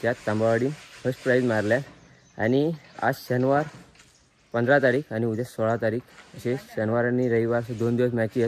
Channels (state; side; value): identical; both; correlation 1.00